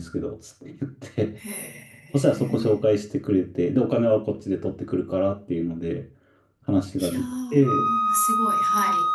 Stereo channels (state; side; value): identical; both; correlation 1.00